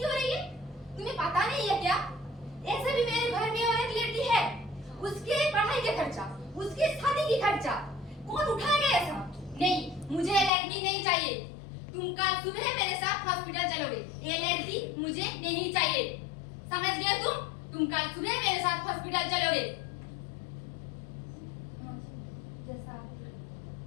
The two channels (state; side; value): drops out; right; at 10.5 s